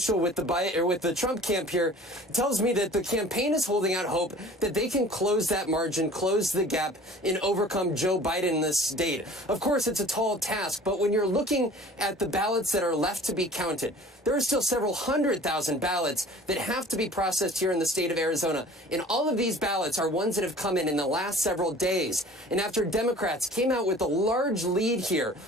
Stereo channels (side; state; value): both; normal; correlation 0.46